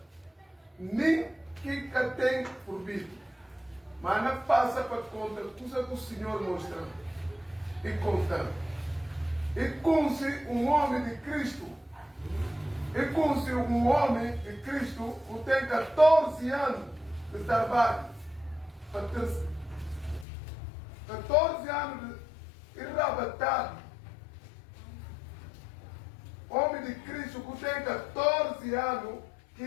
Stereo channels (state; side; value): drops out; right; at 20.2 s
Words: nem que tem por vir. Mas não passa para conta coisa que o Senhor mostra e conta. E com-se um homem de Cristo. E com-se um homem de Cristo que tem 14 anos de trabalho. 14 anos de enrabatado. Homem de Cristo que tem 14 anos que